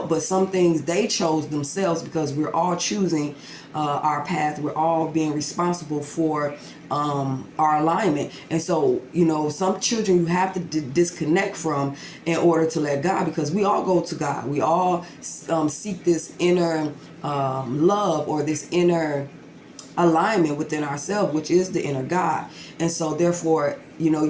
but some things they chose themselves, because we're all choosing our path. We're all being responsible for our alignment. And so, some children you have to disconnect from in order to let God, because we all go to God. We all seek this inner love, or this inner alignment within ourselves, which is the inner God. And so therefore,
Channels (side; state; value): both; identical; correlation 1.00